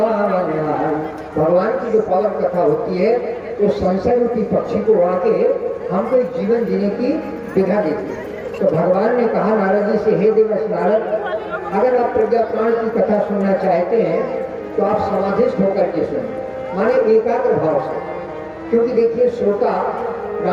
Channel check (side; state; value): both; identical; correlation 1.00